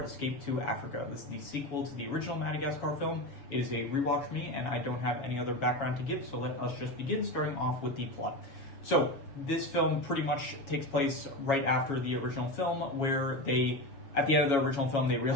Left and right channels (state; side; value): late; right; 7.3 ms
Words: Escape to Africa. This is the sequel to the original Madagascar film. It is a rewatch for me, and I don't have any other background to give, so let us just begin, starting off with the plot. So, this film pretty much takes place right after the original film, where at the end of the original film, they